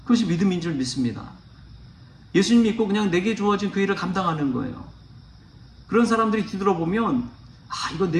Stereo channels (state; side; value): identical; both; correlation 1.00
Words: 그것이 믿음인 줄 믿습니다. 예수님 믿고 그냥 내게 주어진 그 일을 감당하는 거예요. 그런 사람들이 뒤돌아보면 이건